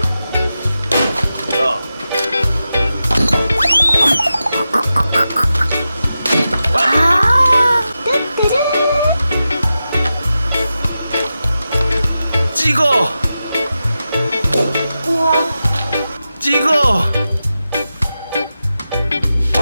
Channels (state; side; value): inverted; both; correlation -0.91